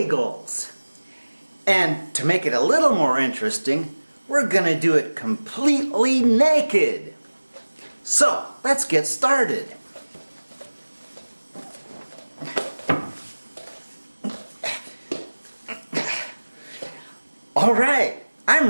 And to make it a little more interesting, we're gonna do it completely naked. So let's get started. Alright, I'm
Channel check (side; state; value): both; inverted; correlation -1.00